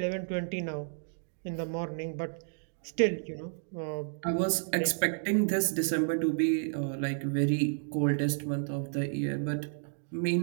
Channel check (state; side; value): silent; left; digital silence